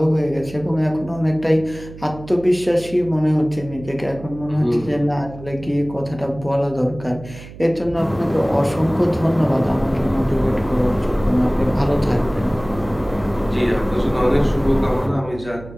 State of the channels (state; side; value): noise; right; hum, 16 dB below the sound